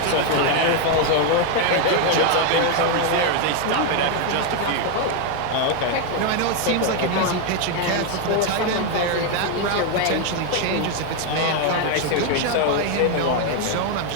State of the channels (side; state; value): both; different; correlation 0.01